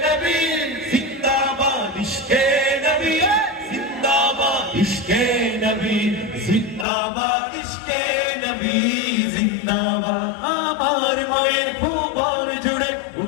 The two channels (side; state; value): right; drops out; at 6.9 s